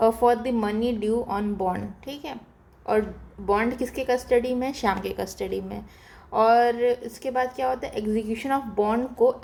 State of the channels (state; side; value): identical; both; correlation 1.00